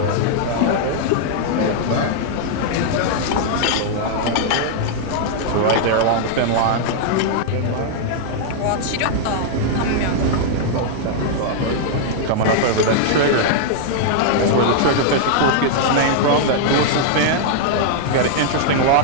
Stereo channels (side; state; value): both; different; correlation -0.01